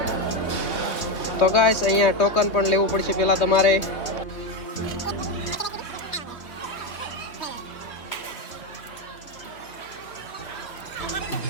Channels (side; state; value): right; late; 3.2 ms